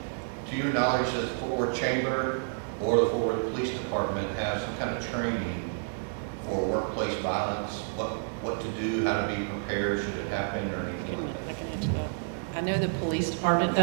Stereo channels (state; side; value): silent; left; digital silence